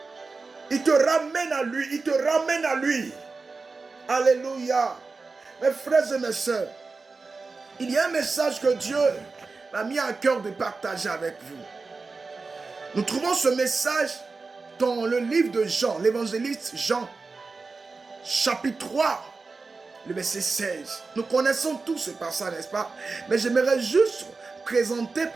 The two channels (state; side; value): quieter; left; 4.1 dB